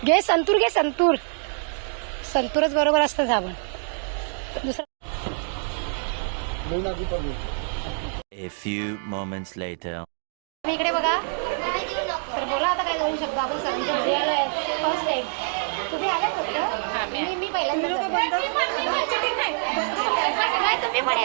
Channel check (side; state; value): left; silent; 61 dB below the other